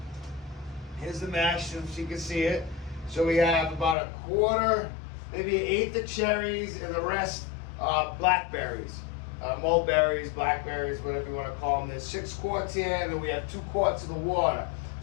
Here's the mash, so you can see it. So we have about a quarter, maybe an eighth of cherries, and the rest blackberries. Mulberries, blackberries, whatever you want to call them. There's 6 quarts here, and then we have 2 quarts of the water.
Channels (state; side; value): drops out; right; at 4.0 s